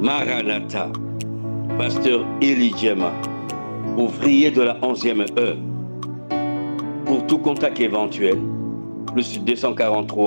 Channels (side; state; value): both; inverted; correlation -1.00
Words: Maranatha, pasteur Élie Djema, ouvrier de la 11e heure. Pour tout contact éventuel, plus